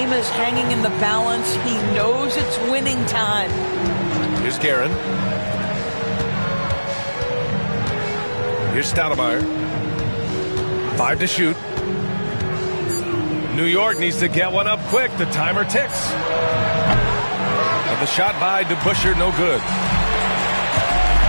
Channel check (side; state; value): both; inverted; correlation -1.00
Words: is hanging in the balance. He knows it's winning time. Here's Guerin. Here's Stoudemire. 5 to shoot. New York needs to get one up quick. The timer ticks. And the shot by DeBusschere, no good.